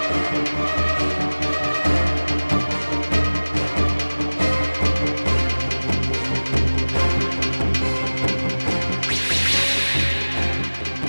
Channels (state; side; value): inverted; both; correlation -1.00